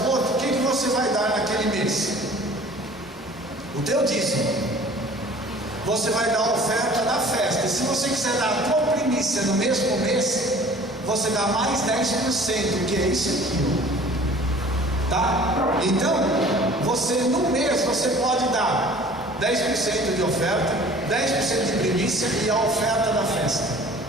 o que você vai dar naquele mês? O teu dízimo. Você vai dar a oferta da festa. E se você quiser dar a tua primícia no mesmo mês, você dá mais 10%, que é isso aqui. Tá? Então, no mês você pode dar 10% de oferta, 10% de primícia e a oferta da festa,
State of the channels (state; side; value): normal; both; correlation 0.48